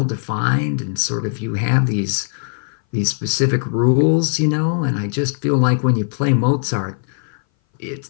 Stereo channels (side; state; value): right; silent; 60 dB below the other